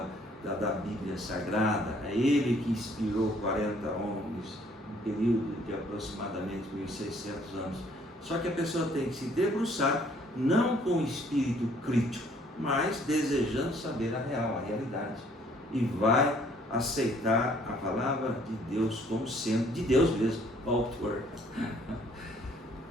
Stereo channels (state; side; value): normal; both; correlation 0.62